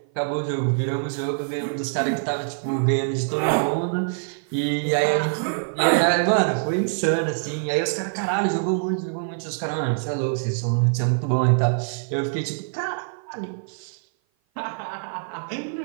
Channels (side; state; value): left; silent; 56 dB below the other